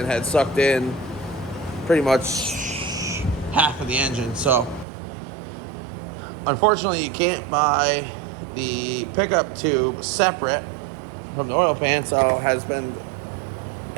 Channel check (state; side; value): drops out; left; at 4.9 s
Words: had sucked in pretty much half of the engine. So unfortunately you can't buy the pickup tube separate from the oil pan, so it has been